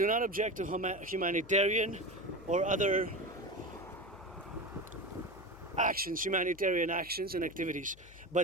not object to humanitarian or other actions, humanitarian actions and activities.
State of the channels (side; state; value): left; noise; hum, 21 dB below the sound